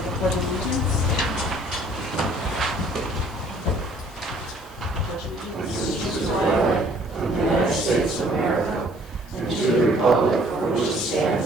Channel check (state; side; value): normal; both; correlation 0.58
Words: the Pledge of Allegiance. Allegiance to the flag of the United States of America and to the republic for which it